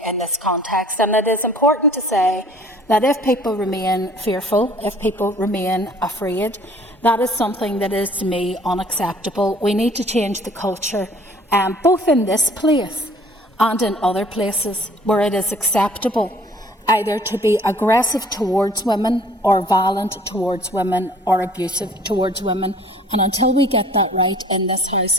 in this context. And it is important to say that if people remain fearful, if people remain afraid, that is something that is to me unacceptable. We need to change the culture, both in this place and in other places where it is acceptable either to be aggressive towards women or violent towards women or abusive towards women. And until we get that right in this House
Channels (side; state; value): both; normal; correlation 0.54